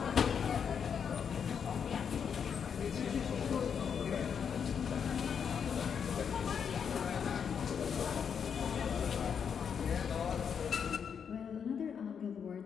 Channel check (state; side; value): quieter; right; 7.2 dB